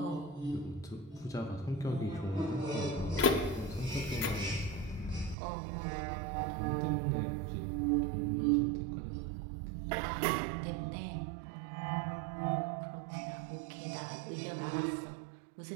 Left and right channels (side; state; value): left; drops out; at 5.4 s